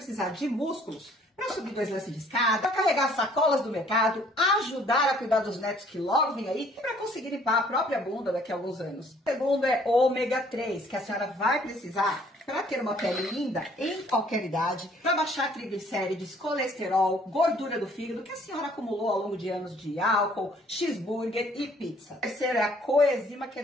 de músculos para subir 2 lances de escada, para carregar sacolas do mercado, ajudar a cuidar dos netos que logo vem aí e para conseguir limpar a própria bunda daqui a alguns anos. O segundo é ômega 3, que a senhora vai precisar para ter uma pele linda em qualquer idade, para baixar triglicérides, colesterol, gordura do fígado que a senhora acumulou ao longo de anos de álcool, cheeseburger e pizza. O terceiro é a coenzima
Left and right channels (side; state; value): both; normal; correlation 0.59